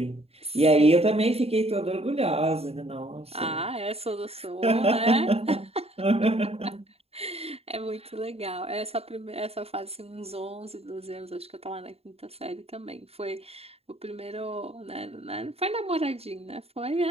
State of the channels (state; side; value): late; left; 0.29 ms